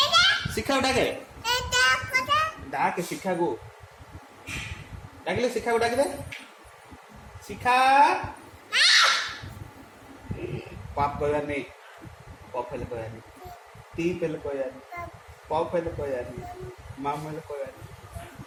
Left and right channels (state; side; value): identical; both; correlation 1.00